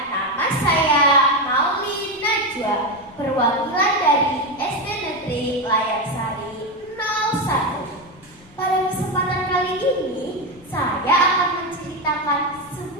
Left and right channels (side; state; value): left; noise; rumble, 25 dB below the sound